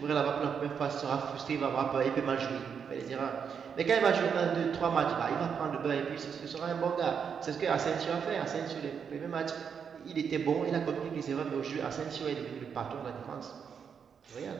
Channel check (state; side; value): quieter; left; 6.9 dB